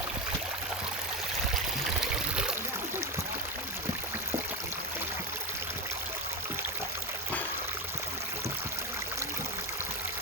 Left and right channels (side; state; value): both; normal; correlation 0.14